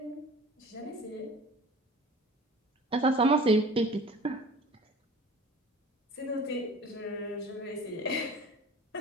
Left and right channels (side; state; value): both; normal; correlation 0.43